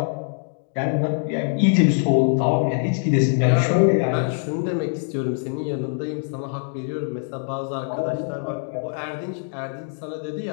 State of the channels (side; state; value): right; silent; 63 dB below the other